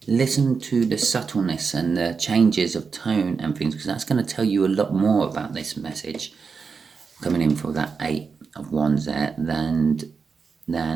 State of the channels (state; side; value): quieter; left; 5.3 dB